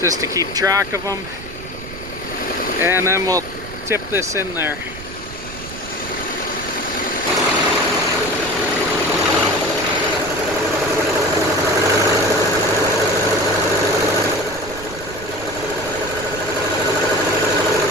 just to keep track of them. And then we'll tip this in there.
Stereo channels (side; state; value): right; noise; rumble, 14 dB below the sound